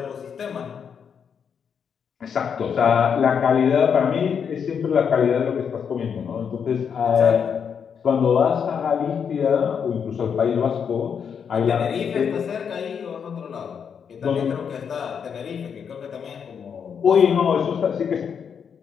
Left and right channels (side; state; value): right; quieter; 7.1 dB